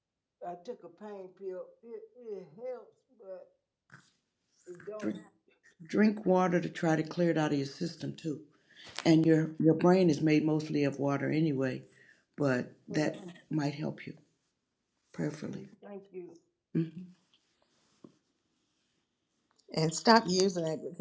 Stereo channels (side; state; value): both; identical; correlation 1.00